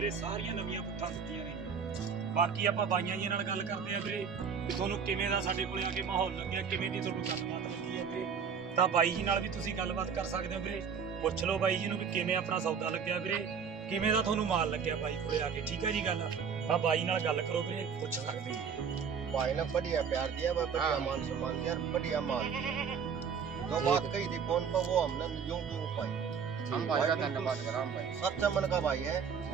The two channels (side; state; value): left; quieter; 6.6 dB